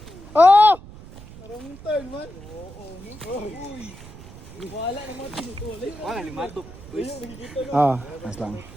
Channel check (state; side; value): noise; right; rumble, 16 dB below the sound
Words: Oh! Marong turn man. Oo. Uy. Wala naman tinutuloy. Wala, limatok. Ah, mas lang.